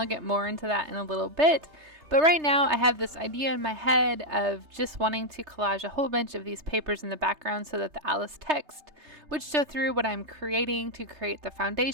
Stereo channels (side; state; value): left; late; 3.3 ms